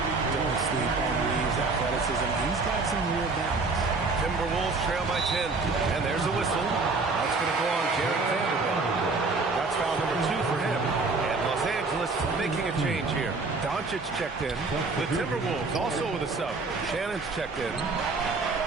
sleep on Reeves' athleticism. He's got some real balance. Timberwolves trail by 10. And there's a whistle. That's going to go on Jared Vanderbilt. That's foul number 2 for him. And Los Angeles making a change here. Doncic checked in. The Timberwolves also with a sub. Shannon's checked in.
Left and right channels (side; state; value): left; quieter; 3.9 dB